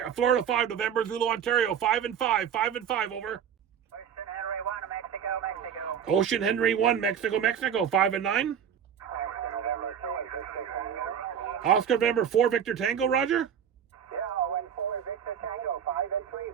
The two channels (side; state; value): left; quieter; 8.3 dB